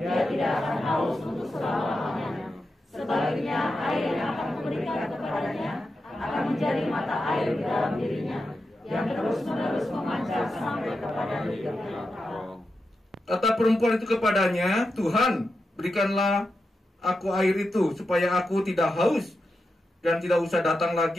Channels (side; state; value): both; normal; correlation 0.89